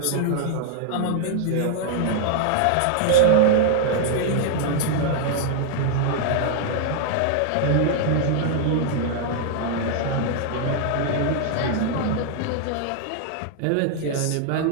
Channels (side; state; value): both; different; correlation -0.01